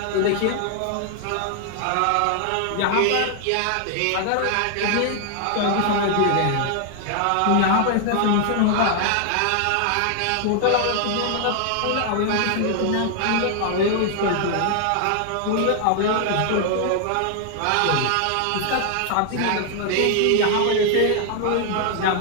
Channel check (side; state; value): both; different; correlation 0.00